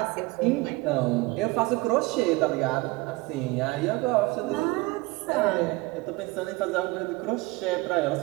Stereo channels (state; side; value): quieter; left; 22.9 dB